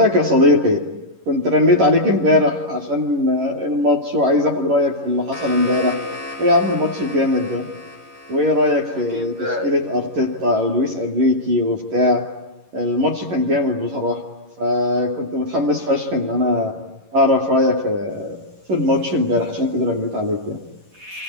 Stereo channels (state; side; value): late; left; 11 ms